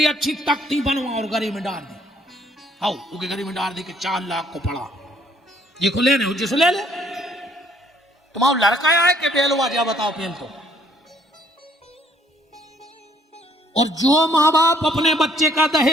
अच्छी तख्ती बनवा और गरी में डाल दी। आओ उसके गरी में डाल दी कि 4 लाख को पड़ा, ये खुले ने जिसको ले ले। तुम्हारा लड़का आए कि बेलवा जा बताओ पेल तो। और जो माँ बाप अपने बच्चे का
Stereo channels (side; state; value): both; normal; correlation 0.64